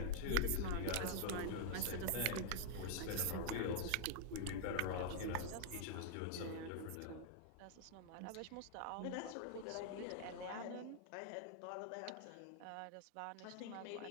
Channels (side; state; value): both; different; correlation -0.01